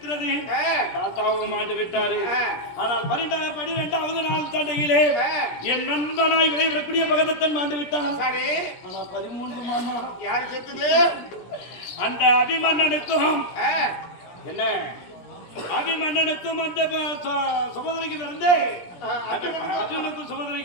ஆ. தாத்தாவும் மாண்டு விட்டாரு. ஆ. ஆனால் 12வது நாள் சண்டையிலே ஆ. என் நண்பனாய் விளைவிடக்கூடிய பகதத்தன் மாண்டு விட்டான். சரி ஆனா 13 மாமா யாரு செத்துது? அந்த அபிமன்னனுக்கும் ஆ. என்ன அபிமன்னனுக்கும் அந்த சுபதிரைக்கு பிறந்தே அர்ஜுனுக்கும்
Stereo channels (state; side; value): late; right; 17 ms